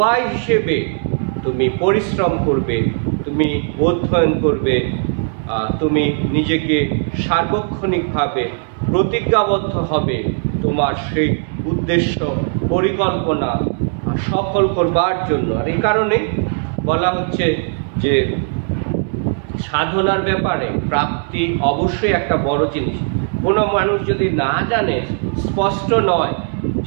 হিসেবে তুমি পরিশ্রম করবে, তুমি অধ্যয়ন করবে, তুমি নিজেকে সার্বক্ষণিকভাবে প্রতিজ্ঞাবদ্ধ হবে তোমার সেই উদ্দেশ্য পরিকল্পনা সফল করবার জন্য। আর এই কারণে বলা হচ্ছে যে সাধনার ব্যাপারে প্রাপ্তি অবশ্যই একটা বড় জিনিস। কোনো মানুষ যদি না জানে, স্পষ্ট নয়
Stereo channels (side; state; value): left; silent; 61 dB below the other